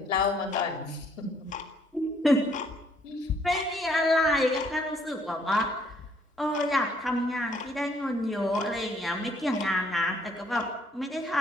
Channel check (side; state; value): both; normal; correlation 0.65